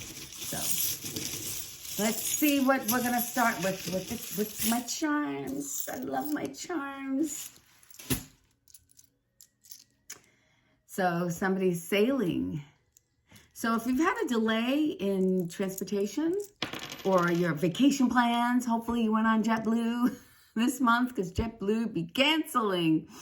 let's see what we're going to start with my charms. I love my charms. So somebody's sailing. So if you've had a delay in transportation or your vacation plans, hopefully you went on JetBlue this month because JetBlue be canceling.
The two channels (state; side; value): identical; both; correlation 1.00